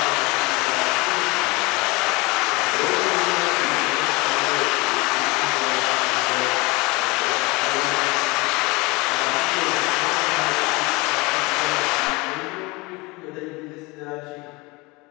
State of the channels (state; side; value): quieter; right; 24.7 dB